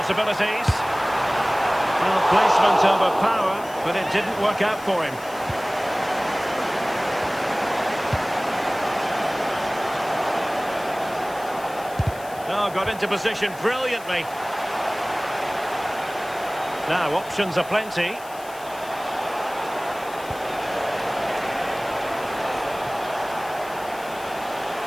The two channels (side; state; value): left; noise; hiss, 19 dB below the sound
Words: Well, placement over power, but it didn't work out for him. Oh, got into position brilliantly. Now, options are plenty.